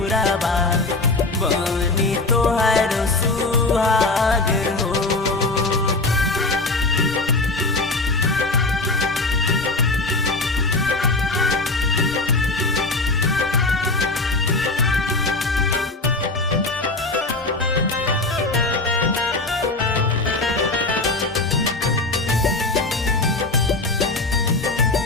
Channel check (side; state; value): right; quieter; 3.2 dB